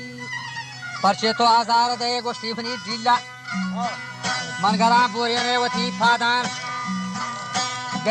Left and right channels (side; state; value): both; identical; correlation 1.00